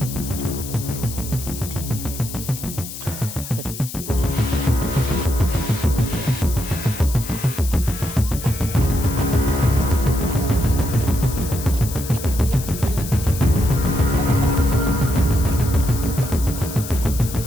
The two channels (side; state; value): left; noise; hiss, 10 dB below the sound